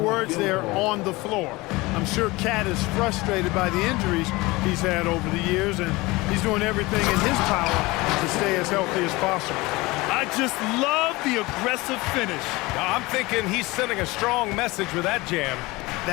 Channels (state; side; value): quieter; right; 21.9 dB